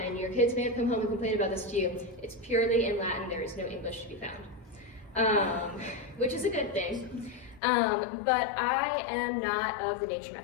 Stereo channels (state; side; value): drops out; right; at 7.6 s